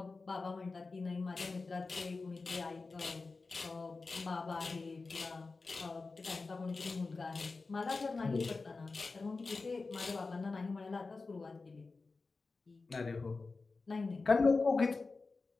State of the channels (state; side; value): quieter; right; 3.9 dB